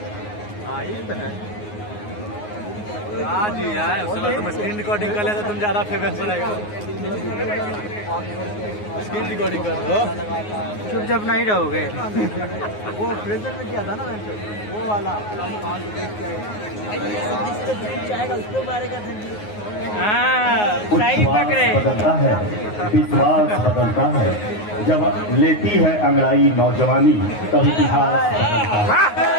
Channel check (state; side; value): late; right; 9.5 ms